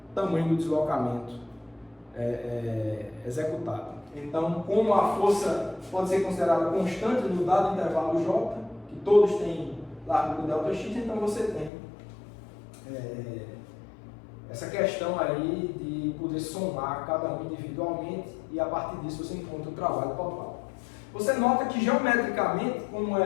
tamanho do deslocamento executado. Então, como a força pode ser considerada constante no dado intervalo J, que todos têm largura ΔX, então você tem essa questão aí de poder somar cada um individualmente e a partir disso você encontra o trabalho total. Você nota que geometricamente, como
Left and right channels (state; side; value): drops out; right; at 11.7 s